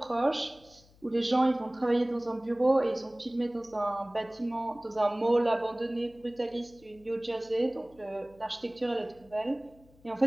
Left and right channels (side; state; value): left; noise; hum, 27 dB below the sound